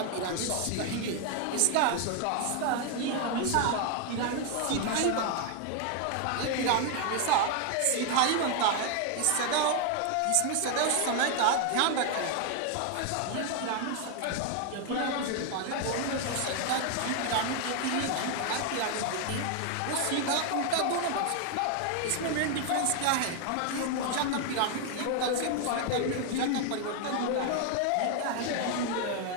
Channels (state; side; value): different; both; correlation 0.01